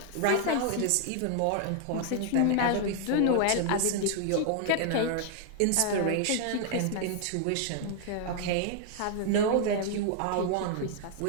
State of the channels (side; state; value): both; different; correlation 0.00